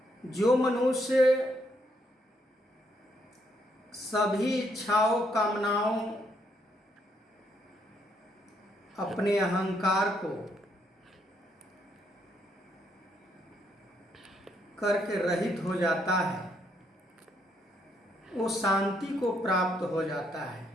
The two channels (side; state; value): both; normal; correlation 0.73